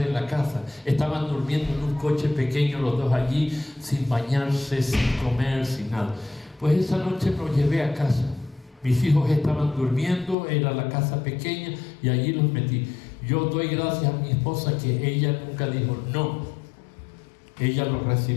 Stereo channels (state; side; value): drops out; right; at 10.4 s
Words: en la casa. Estaban durmiendo en un coche pequeño los dos allí, sin bañarse, sin comer, sin nada. Pues esa noche los llevé a casa. Mis hijos estaban durmiendo, era la casa pequeña y allí los metí. Yo doy gracias a mi esposa que ella nunca dijo no. Ella los